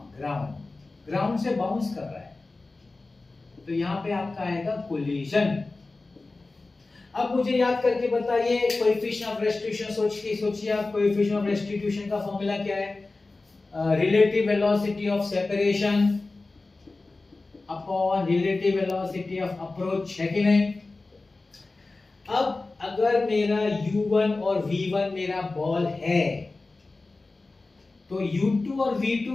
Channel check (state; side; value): quieter; right; 3.4 dB